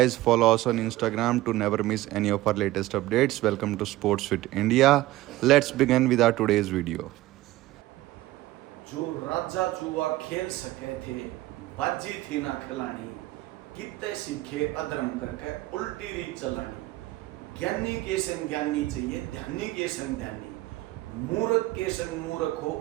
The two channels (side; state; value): left; quieter; 17.0 dB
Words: follow us on Instagram to never miss any of our latest updates. Welcome to Sports Fit India. Let's begin with our today's video. जो राजा चुआ खेल सके थे, बाजी थी ना खिलानी, कितने सीखे अधर्म करके उल्टी रीत चलानी। ज्ञानी के संग ज्ञानी चाहिए, ध्यानी के संग ध्यानी, मूर्ख के संग मूर्ख हो,